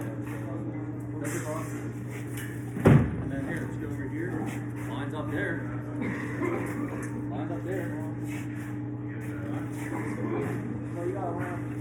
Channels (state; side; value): identical; both; correlation 1.00